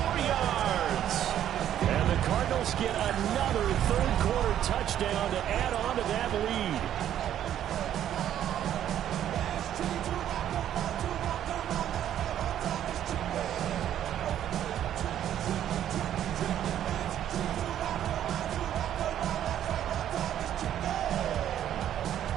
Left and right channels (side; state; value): left; quieter; 10.9 dB